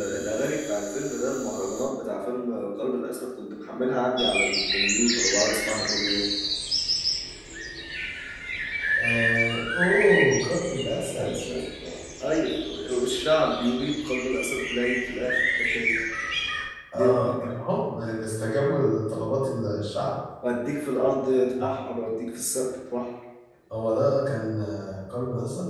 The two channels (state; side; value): identical; both; correlation 1.00